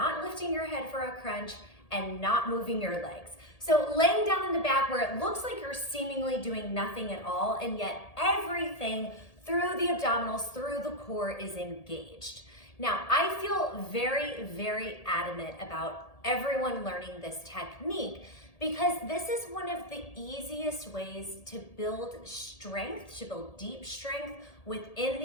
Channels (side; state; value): right; late; 1.8 ms